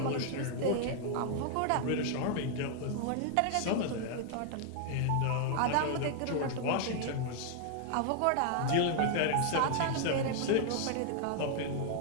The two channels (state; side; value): different; both; correlation 0.00